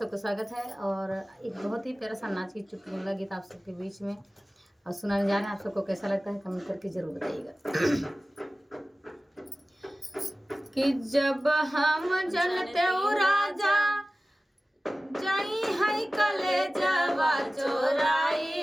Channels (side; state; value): both; normal; correlation 0.96